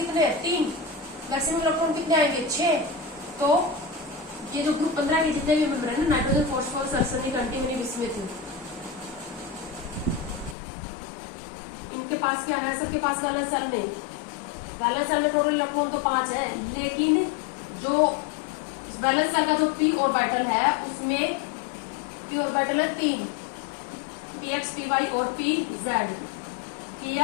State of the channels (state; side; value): drops out; right; at 10.6 s